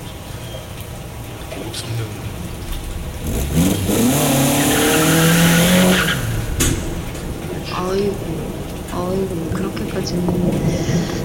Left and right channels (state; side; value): identical; both; correlation 1.00